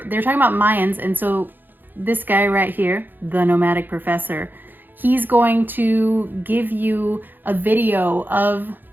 they're talking about Mayans, and so this guy right here, the Nomadic Professor, he's going to give you a video of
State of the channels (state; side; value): late; left; 0.090 ms